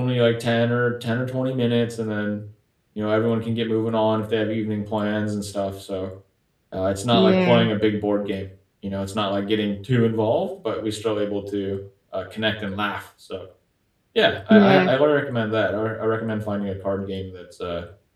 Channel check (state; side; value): identical; both; correlation 1.00